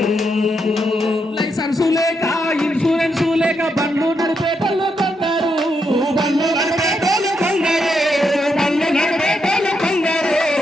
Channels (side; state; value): both; normal; correlation 0.81